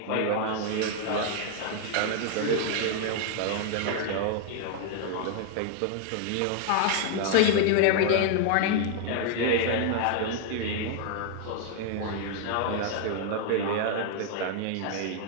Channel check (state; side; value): different; both; correlation 0.00